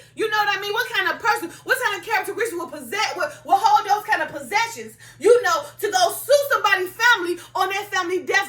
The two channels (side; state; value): both; identical; correlation 1.00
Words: You know what I mean? What kind of person, what kind of characteristics will hold those kind of possessions, to go sue somebody's family on their family